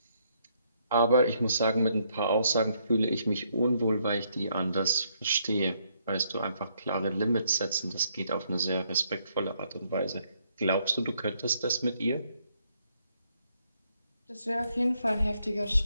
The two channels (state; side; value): inverted; both; correlation -0.72